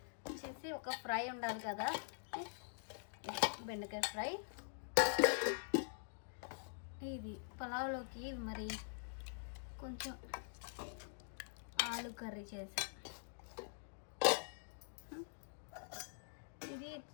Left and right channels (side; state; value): right; silent; digital silence